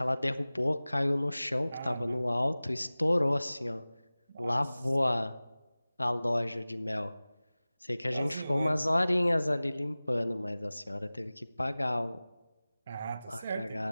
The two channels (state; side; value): inverted; both; correlation -0.98